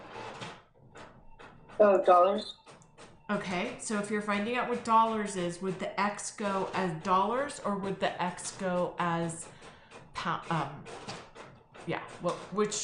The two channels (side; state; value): both; identical; correlation 1.00